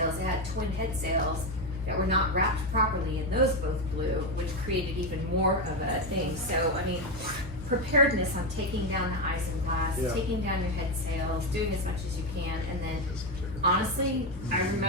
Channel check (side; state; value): both; normal; correlation 0.10